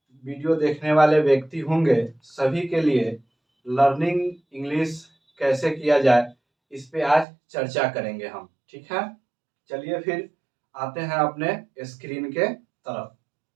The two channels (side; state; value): left; drops out; at 7.2 s